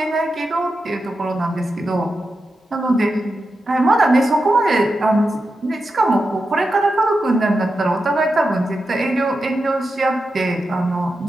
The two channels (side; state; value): both; normal; correlation 0.89